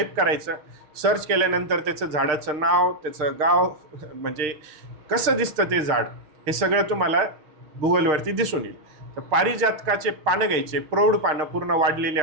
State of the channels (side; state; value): left; late; 6.5 ms